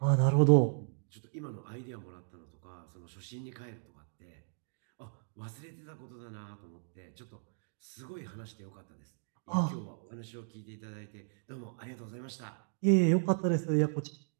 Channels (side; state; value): left; silent; digital silence